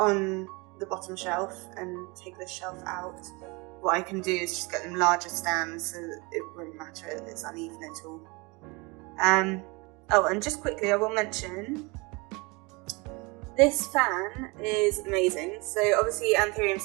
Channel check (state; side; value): quieter; left; 27.0 dB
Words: the bottom shelf and take this shelf out, what I can do is just get them larger stands so that it won't matter if it's uneven at all. Oh, and just quickly I will mention, this fan is amazing. So obviously